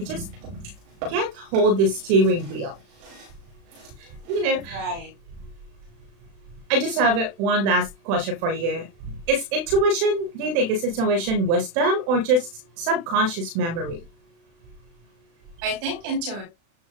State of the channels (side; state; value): left; late; 36 ms